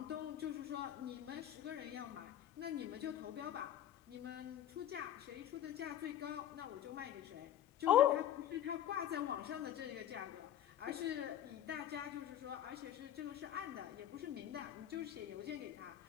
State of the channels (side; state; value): right; quieter; 11.2 dB